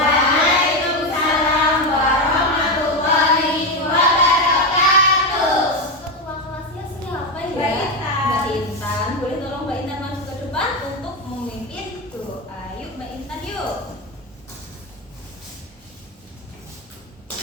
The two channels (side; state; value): both; normal; correlation 0.11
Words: warahmatullahi wabarakatuh. Ketua kelasnya siapa ya? Mbak Intan. Mbak Intan. Boleh tolong Mbak Intan masuk ke depan untuk memimpin doa. Yuk Mbak Intan yuk.